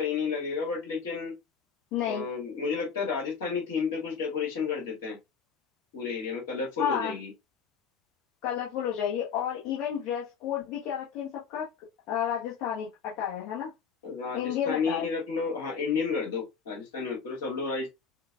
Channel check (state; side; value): quieter; right; 6.3 dB